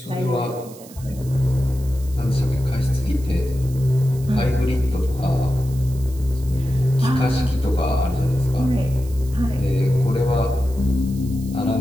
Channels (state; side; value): noise; right; hiss, 21 dB below the sound